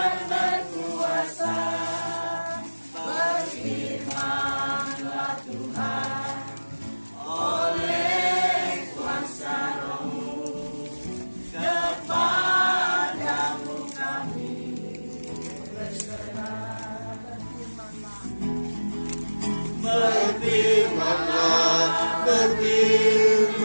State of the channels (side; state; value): both; inverted; correlation -1.00